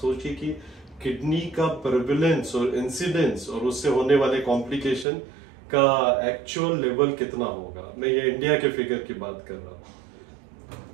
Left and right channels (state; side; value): drops out; left; at 5.1 s